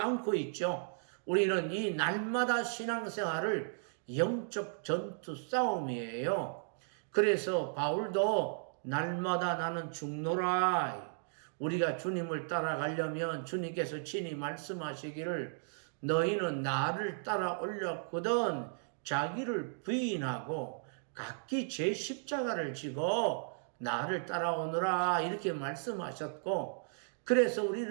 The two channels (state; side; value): silent; left; digital silence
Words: 있죠. 우리는 이 날마다 신앙생활을 영적 전투 싸움이에요. 그래서 바울도 날마다 나는 죽노라. 우리가 주님을 따라가려면 주님께서 친히 말씀하시기를 너희는 나를 따라올렸거든 자기를 부인하고 각기 제 십자가를 지고 나를 따라오너라 이렇게 말씀하셨고 그래서